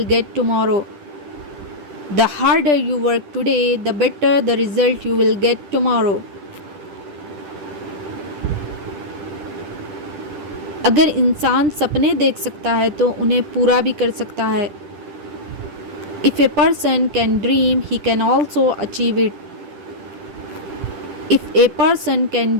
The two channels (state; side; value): late; left; 10 ms